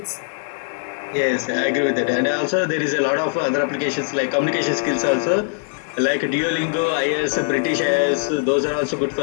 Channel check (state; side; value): silent; right; digital silence